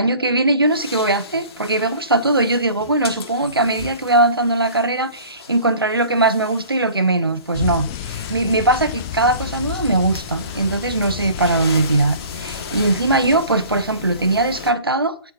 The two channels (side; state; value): both; inverted; correlation -0.46